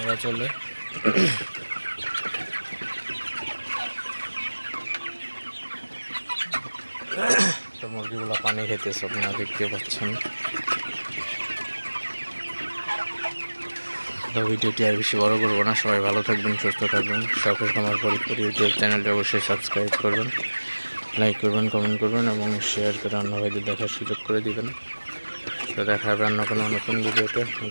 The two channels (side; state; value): both; inverted; correlation -1.00